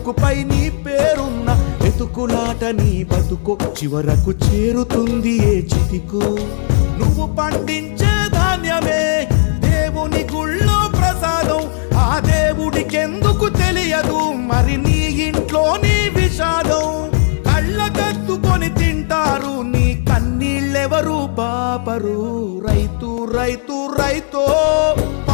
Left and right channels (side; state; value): right; silent; 60 dB below the other